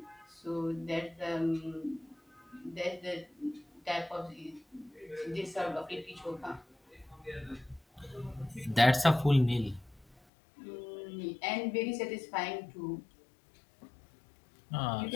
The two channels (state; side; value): drops out; right; at 10.2 s